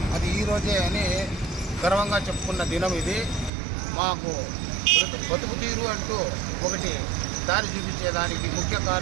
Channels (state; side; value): drops out; left; at 3.5 s